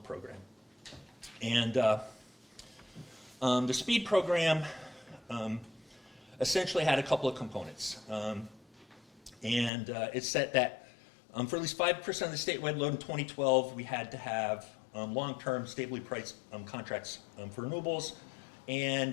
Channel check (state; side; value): drops out; right; at 9.7 s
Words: Program. And the SPEED program essentially had a couple of components. It said that for at least 5% of the statewide load in 2012, we had to have long-term stably priced contracts for renewables,